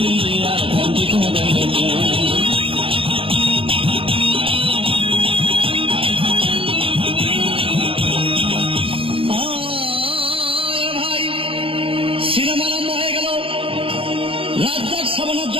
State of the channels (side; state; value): left; late; 0.27 ms